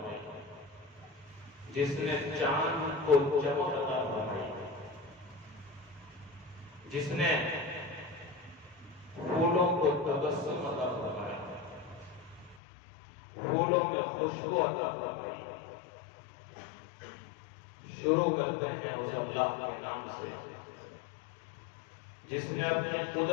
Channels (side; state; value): right; drops out; at 12.6 s